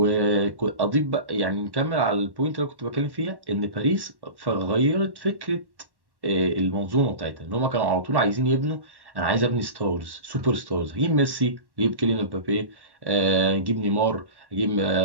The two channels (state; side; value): late; left; 1.1 ms